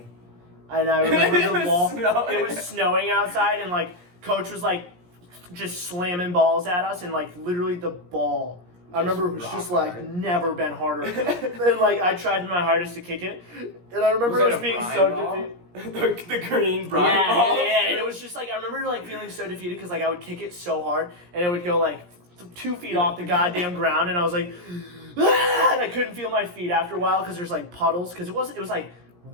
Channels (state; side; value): late; left; 17 ms